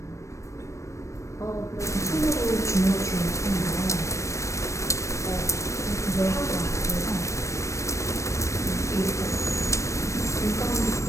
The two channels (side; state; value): right; late; 0.15 ms